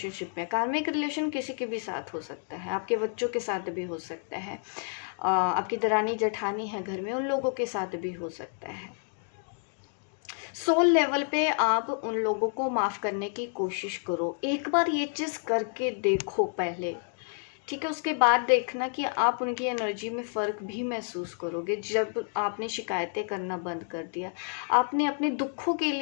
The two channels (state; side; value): silent; right; 58 dB below the other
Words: में, कार्मिक रिलेशन किसी के भी साथ हो सकता है, आपके बच्चों के साथ भी हो सकता है, आपकी दरानी जेठानी है घर में उन लोगों के साथ भी हो सकता है। सोल लेवल पे आप उन लोगों को माफ़ करने की कोशिश करो, एक बार ये चीज़ करके देखो पहले, ठीक है। उसके बाद देखना कि आप उनकी एनर्जी में फ़र्क भी महसूस करोगे। जब आपने शिकायतें करना बंद कर दिया, आपने अपने दुखों के